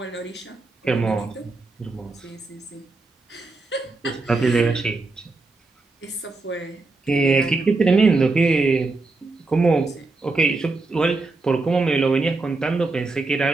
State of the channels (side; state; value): left; quieter; 3.5 dB